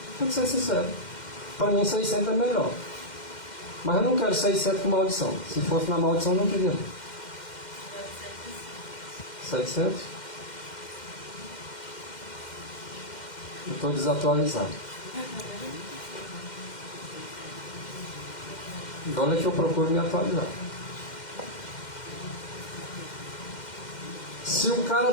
Tem que ser sincero. Para mim 600 é melhor. Mas eu não quero 600 com maldição. Se fosse na maldição eu não queria. 700? Eu estou desatualizado. E olha que eu procuro me atualizar. Se o cara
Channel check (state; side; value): late; right; 2.1 ms